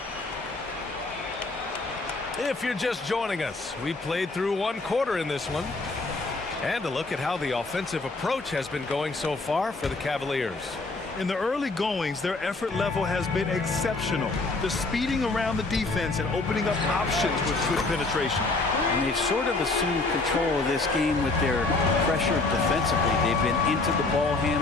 If you're just joining us, we played through 1 quarter in this one. And a look at how the offensive approach has been going so far for the Cavaliers. In the early goings, their effort level has been exceptional. They're speeding around the defense and opening up options with good penetration. And they've sort of assumed control of this game with their pressure defensively. They've been into the ball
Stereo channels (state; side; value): quieter; right; 3.4 dB